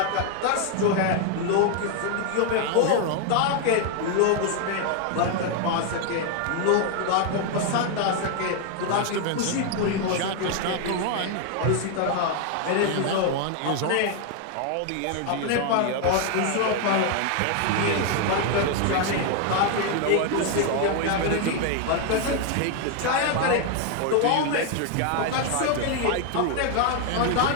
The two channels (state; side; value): different; both; correlation 0.01